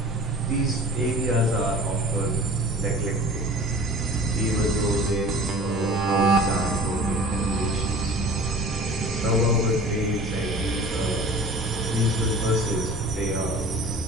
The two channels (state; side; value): normal; both; correlation 0.43